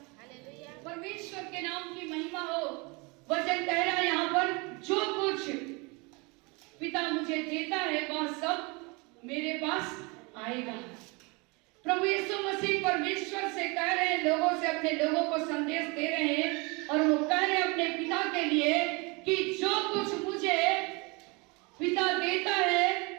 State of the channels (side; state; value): left; quieter; 28.2 dB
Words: परमेश्वर के नाम की महिमा हो। वचन कह रहा है यहाँ पर, जो कुछ पिता मुझे देता है वह सब मेरे पास आएगा। प्रभु यीशु मसीह परमेश्वर से कह रहे हैं, लोगों से, अपने लोगों को संदेश दे रहे हैं, और वो कह रहे हैं अपने पिता के लिए कि जो कुछ मुझे पिता देता है